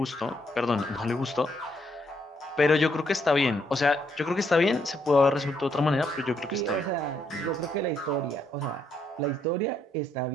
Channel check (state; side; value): normal; both; correlation 0.74